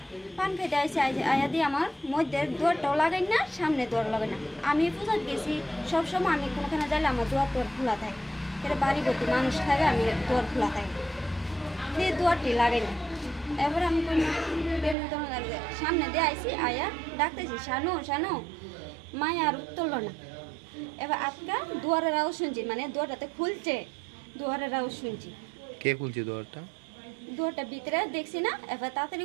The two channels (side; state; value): left; drops out; at 15.0 s